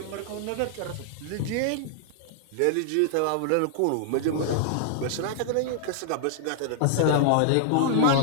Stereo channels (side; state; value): both; different; correlation -0.01